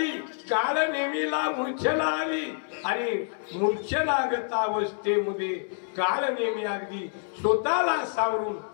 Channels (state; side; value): silent; right; 60 dB below the other